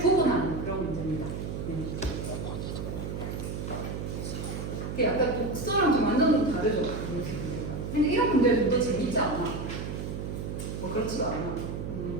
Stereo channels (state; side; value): noise; right; hum, 5 dB below the sound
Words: 그런 문제입니다. 약간 독서랑 좀 완전 다르죠. 근데 이런 문제는 더 재밌지 않아? 뭐 그렇지가 않아.